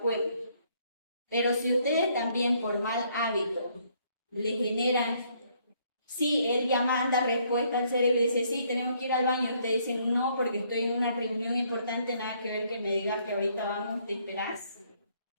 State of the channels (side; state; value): both; inverted; correlation -0.67